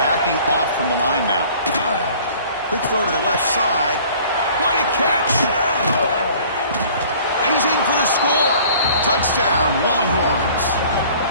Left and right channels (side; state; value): both; inverted; correlation -0.51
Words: off from the line now. Quick throw to the left side. What a catch! And he's in for the score. Touchdown, Longhorns.